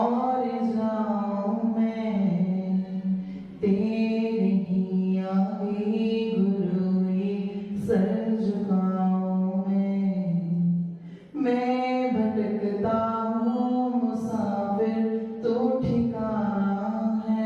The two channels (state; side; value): identical; both; correlation 1.00